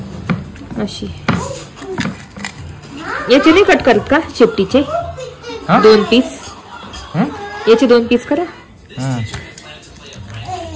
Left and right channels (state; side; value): identical; both; correlation 1.00